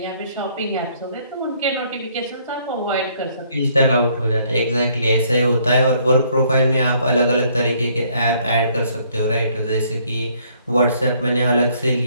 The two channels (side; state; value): both; inverted; correlation -0.65